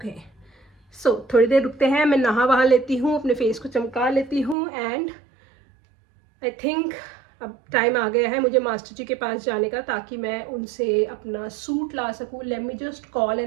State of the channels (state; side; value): drops out; left; at 4.5 s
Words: so थोड़ी देर रुकते हैं, मैं नहा वहा लेती हूँ, अपने फेस को चमका लेती हूँ एंड आई थिंक अब टाइम आ गया है मुझे मास्टर जी के पास जाने का, ताकि मैं उनसे अपना सूट ला सकूँ. Let me just call